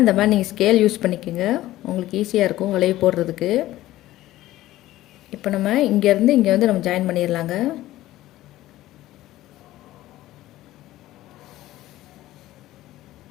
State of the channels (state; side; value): quieter; right; 15.5 dB